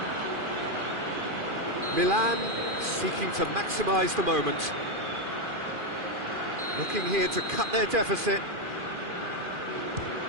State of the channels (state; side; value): late; left; 2.4 ms